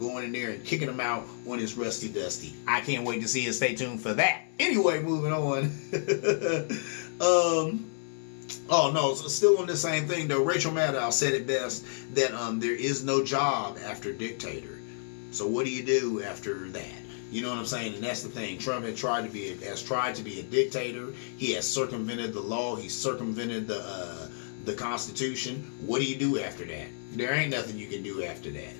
in there and kicking him out when it's rusty dusty. I can't wait to see it. Stay tuned for that. Anyway, moving on. Oh no, still on the same thing though. Rachel Maddow said it best that there is no job after dictator. So what do you do after that? You know what I'm saying? And that's the thing. Trump has tried to be a dictator. He has circumvented the law. He's circumvented the Constitution. What do you do after that? There ain't nothing you can do after that.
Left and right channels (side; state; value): right; silent; digital silence